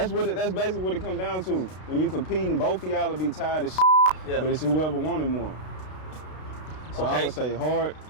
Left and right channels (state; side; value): late; right; 32 ms